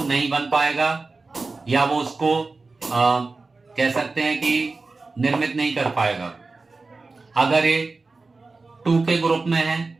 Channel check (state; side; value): quieter; left; 3.8 dB